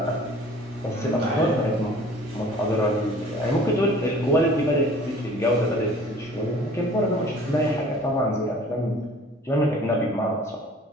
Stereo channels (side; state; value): both; normal; correlation 0.49